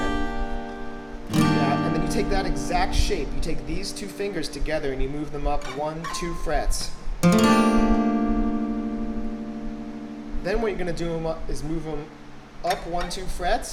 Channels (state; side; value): identical; both; correlation 1.00